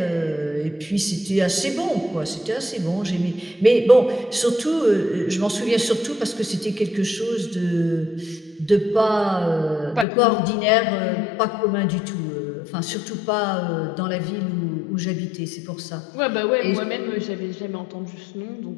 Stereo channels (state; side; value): drops out; right; at 10.1 s